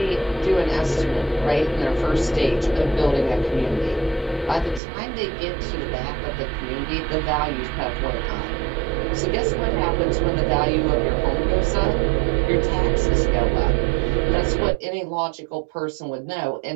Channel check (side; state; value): left; drops out; at 4.8 s